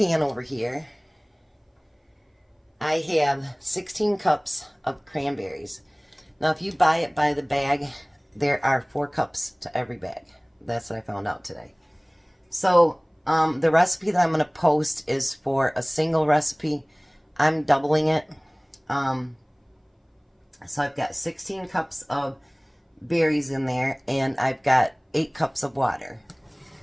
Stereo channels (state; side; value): identical; both; correlation 1.00